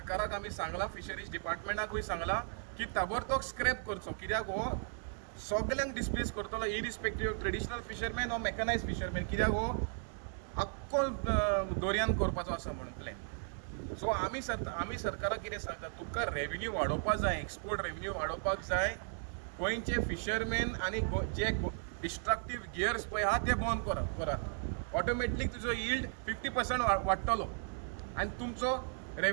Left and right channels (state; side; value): silent; left; 54 dB below the other